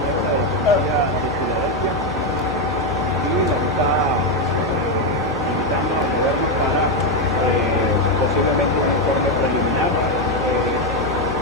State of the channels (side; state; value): both; normal; correlation 0.06